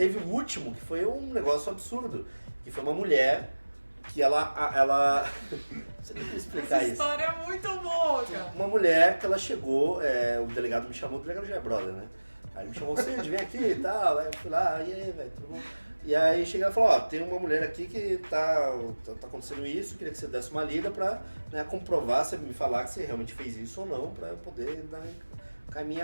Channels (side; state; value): both; inverted; correlation -1.00